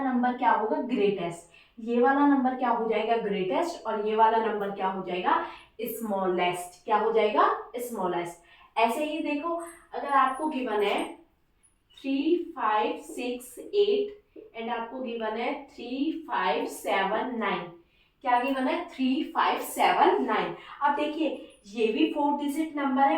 नंबर क्या होगा, ग्रेटेस्ट। ये वाला नंबर क्या हो जाएगा, ग्रेटेस्ट, और ये वाला नंबर क्या हो जाएगा, स्मॉलेस्ट। क्या हो जाएगा, स्मॉलेस्ट। ऐसे ही देखो, अगर आपको गिवन है 3, 5, 6, 8 एंड आपको गिवन है 3, 5, 7, 9, क्या गिवन है, 3, 5, 7, 9। अब देखिए ये भी 4 डिजिट नंबर है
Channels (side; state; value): both; identical; correlation 1.00